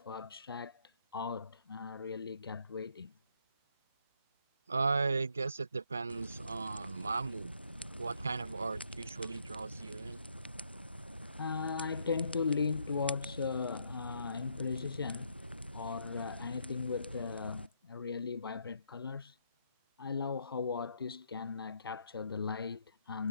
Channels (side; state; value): both; inverted; correlation -0.73